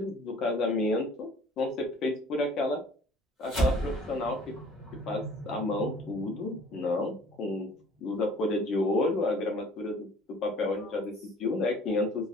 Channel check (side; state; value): both; normal; correlation 0.52